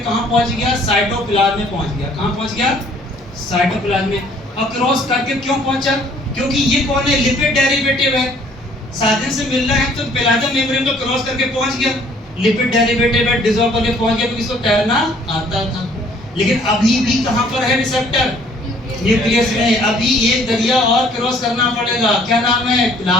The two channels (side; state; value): both; normal; correlation 0.59